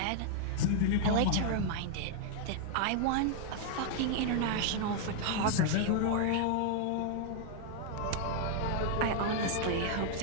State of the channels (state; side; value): different; both; correlation -0.01